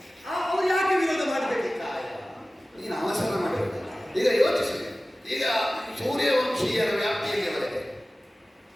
ಅವರು ಯಾಕೆ ವಿರೋಧ ಮಾಡಬೇಕು? ನೀನು ಅವಸರ ಮಾಡಬೇಕು. ಈಗ ಯೋಚಿಸಿ, ಈಗ ಸೂರ್ಯವಂಶೀಯರ ವ್ಯಾಪ್ತಿಯಲ್ಲಿ ಬರುತ್ತೆ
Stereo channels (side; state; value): both; normal; correlation 0.97